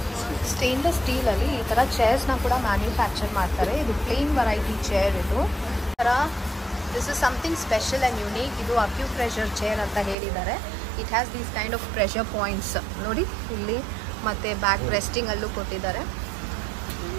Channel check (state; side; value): drops out; left; at 10.2 s